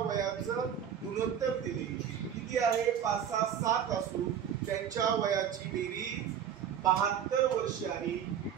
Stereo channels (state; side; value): quieter; left; 8.8 dB